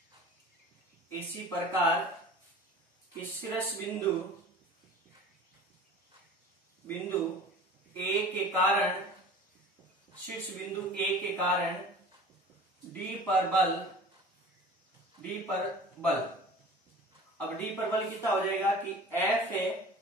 प्रकार शीर्ष बिंदु A के कारण, शीर्ष बिंदु A के कारण D पर बल, अब D पर बल कितना हो जाएगा कि F है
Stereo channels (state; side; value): normal; both; correlation 0.41